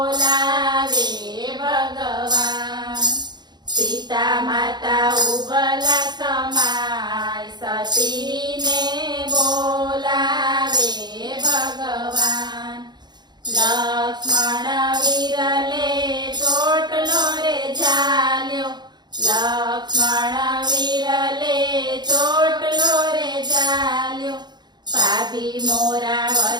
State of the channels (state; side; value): late; left; 0.21 ms